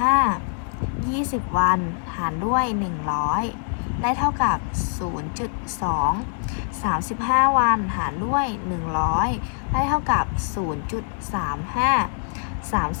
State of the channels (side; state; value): right; silent; 60 dB below the other